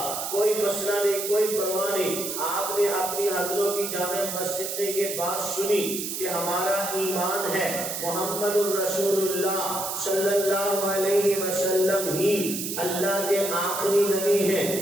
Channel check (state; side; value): noise; right; hiss, 4 dB below the sound